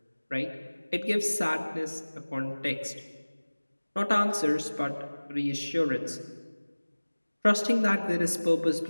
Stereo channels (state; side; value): inverted; both; correlation -1.00